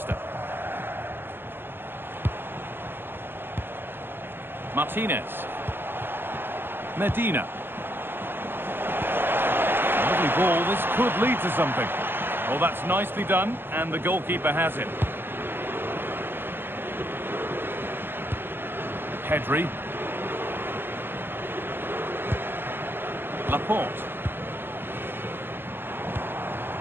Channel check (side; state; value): left; late; 0.099 ms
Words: Martinez. Medina. Lovely ball, this could lead to something. Well, that's nicely done, and the goalkeeper has it. Pedri. Laporte.